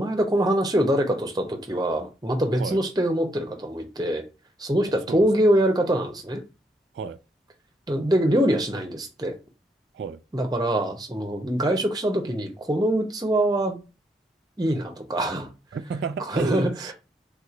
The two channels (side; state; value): both; normal; correlation 0.75